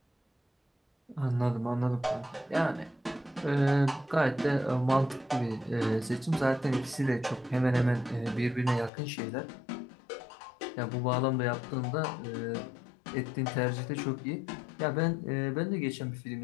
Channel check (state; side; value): drops out; right; at 8.9 s